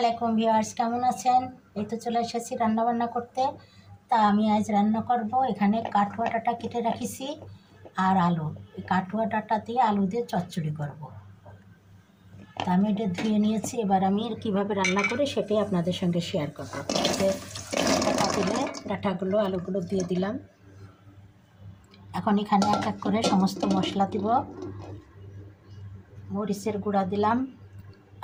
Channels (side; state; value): both; identical; correlation 1.00